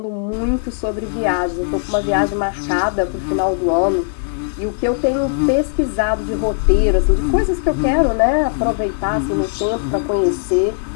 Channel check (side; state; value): right; silent; digital silence